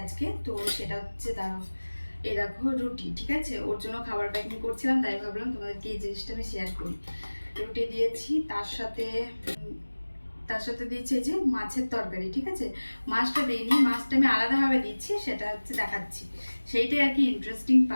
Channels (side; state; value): both; inverted; correlation -1.00